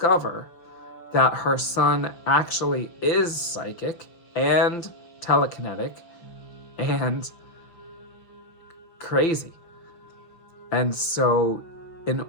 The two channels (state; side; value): late; right; 5.9 ms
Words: that her son actually is psychic and telekinetic and crazy. And so in